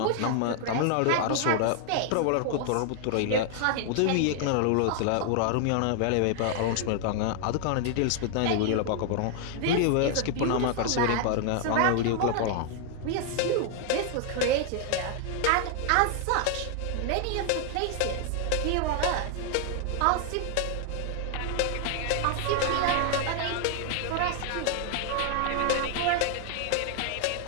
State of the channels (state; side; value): different; both; correlation 0.00